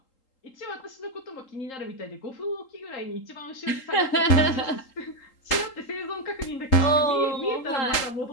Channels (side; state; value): right; late; 3.8 ms